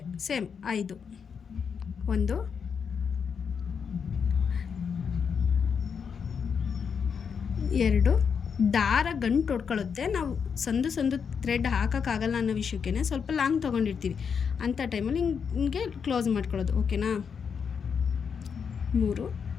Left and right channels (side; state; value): right; quieter; 6.5 dB